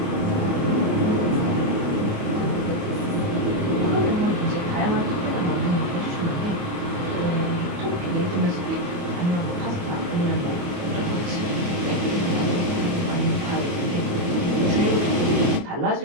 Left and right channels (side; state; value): left; late; 28 ms